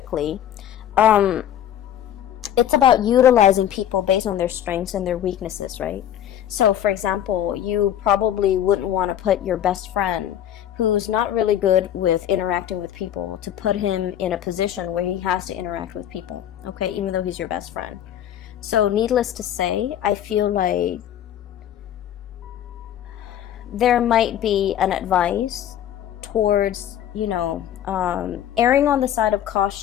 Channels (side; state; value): right; quieter; 10.8 dB